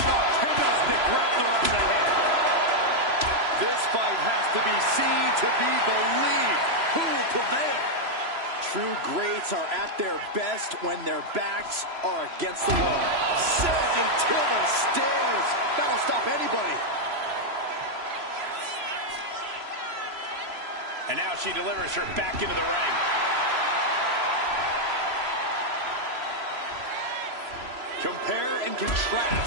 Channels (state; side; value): late; left; 3.0 ms